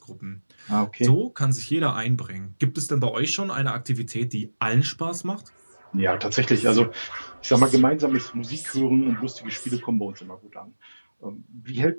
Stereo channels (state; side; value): inverted; both; correlation -1.00